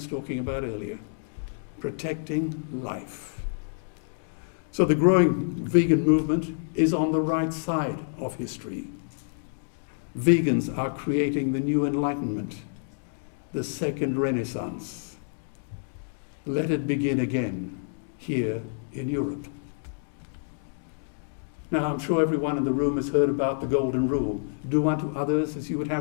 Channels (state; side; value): silent; right; digital silence